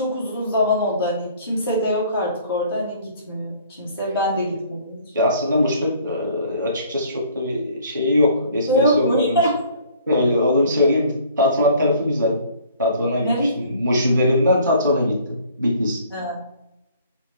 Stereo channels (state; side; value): inverted; both; correlation -0.55